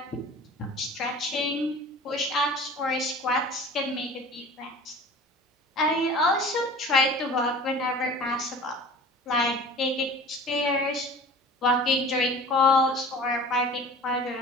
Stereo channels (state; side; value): normal; both; correlation 0.41